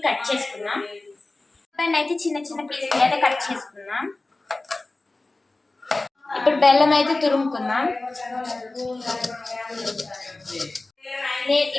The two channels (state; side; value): quieter; right; 3.1 dB